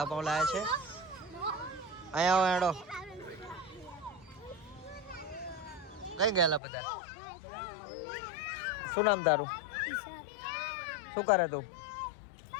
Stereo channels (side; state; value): right; drops out; at 6.6 s